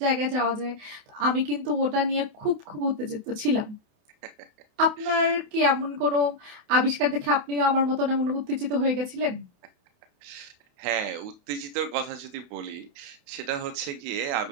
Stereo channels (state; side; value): late; left; 28 ms